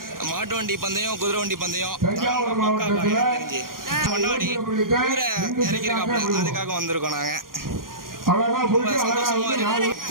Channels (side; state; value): left; late; 0.91 ms